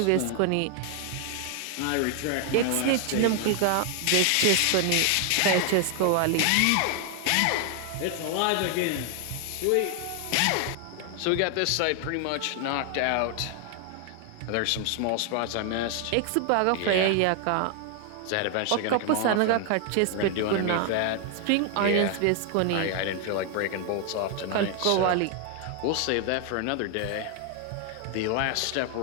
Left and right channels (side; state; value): both; different; correlation 0.00